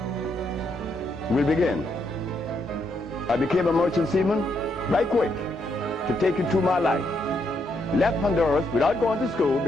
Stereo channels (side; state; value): both; normal; correlation 0.77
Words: We'll begin. I became a merchant seaman right quick to take you through my life. Left Honduras without going to school,